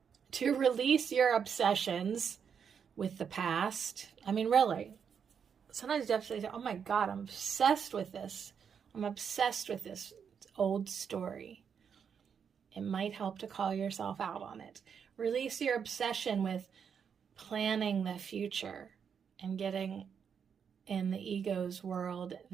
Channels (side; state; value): left; quieter; 7.1 dB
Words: to release your obsessions with the past. I mean, really, sometimes you have to say, oh my God, I'm obsessed with this. I'm obsessed with this old story. It might help to call yourself out on it. Release your obsession with planning the future and getting in the ego's world